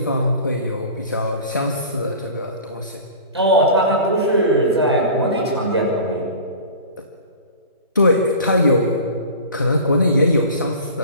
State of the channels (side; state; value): both; inverted; correlation -0.38